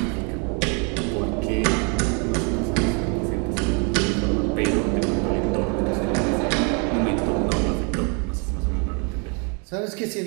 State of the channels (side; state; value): left; quieter; 35.5 dB